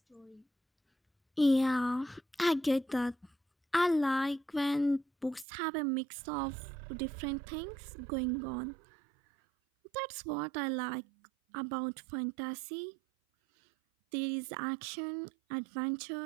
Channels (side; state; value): left; drops out; at 5.5 s